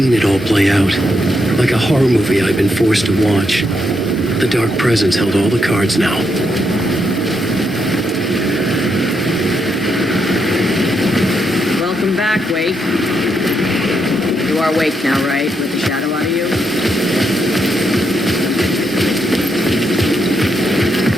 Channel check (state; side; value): normal; both; correlation 0.80